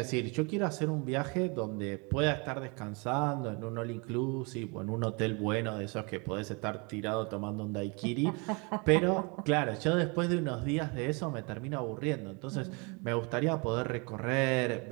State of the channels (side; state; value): left; quieter; 31.2 dB